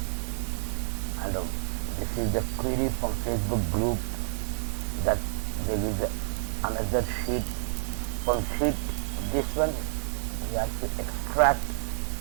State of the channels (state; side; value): silent; left; 59 dB below the other